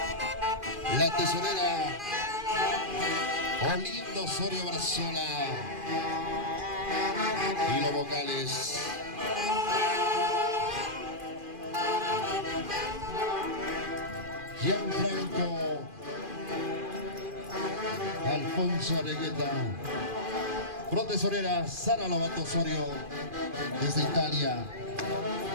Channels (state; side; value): late; left; 2.4 ms